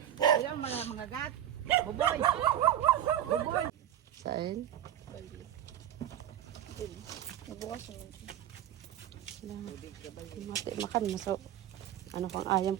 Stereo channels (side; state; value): left; quieter; 11.3 dB